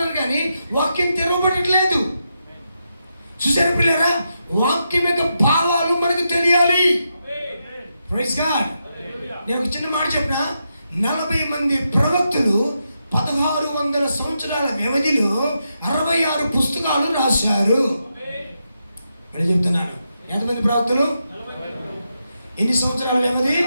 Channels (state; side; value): inverted; both; correlation -0.85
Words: కానీ వాక్యం తెరవబడట్లేదు. చూసారా పిల్లరా? వాక్యం యొక్క భావాలు మనకు తెలియాలి. Praise God. నేను ఒక చిన్న మాట చెప్పిన, 40 మంది ప్రవక్తలు 1600 సంవత్సరాల వ్యవధిలో 66 పుస్తకాలు రాశారు. మరి చెప్తున్నాను, ఎంతమంది ప్రవక్తలు? ఎన్ని సంవత్సరాల వ్యవధి?